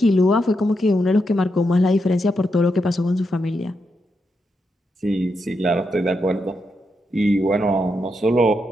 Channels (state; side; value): normal; both; correlation 0.83